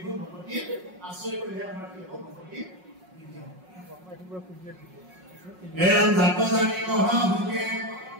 ভকতি আশ্ৰয় কৰিলে আমাৰ কি হ'ব, ভকতি বৃদ্ধি হ'ব। এৰম জাত জানি মহাভোগে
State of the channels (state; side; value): late; left; 5.5 ms